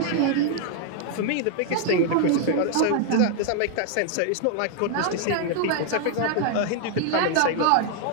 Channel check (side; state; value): both; different; correlation 0.00